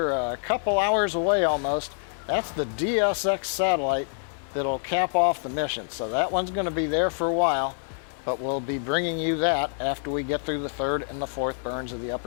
couple hours away almost. That's the DSX satellite that'll cap off the mission. So that one's going to be there for a while, but we'll be bringing you that after we get through the 3rd and the 4th burns of the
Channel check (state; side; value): silent; right; 61 dB below the other